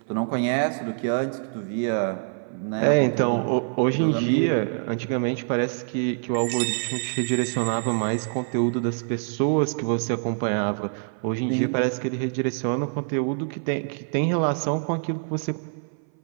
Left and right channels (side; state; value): left; silent; 57 dB below the other